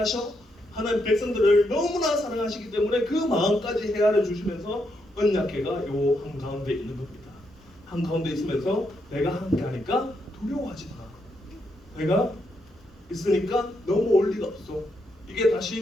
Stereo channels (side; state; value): both; normal; correlation 0.79